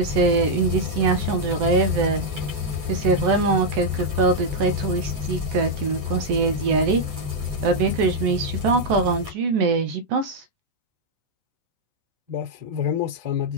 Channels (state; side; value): late; left; 8.6 ms